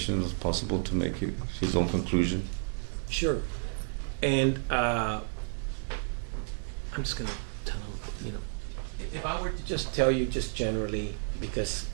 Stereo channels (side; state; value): left; silent; digital silence